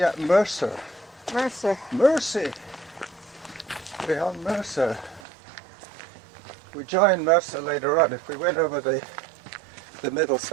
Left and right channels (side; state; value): left; drops out; at 5.2 s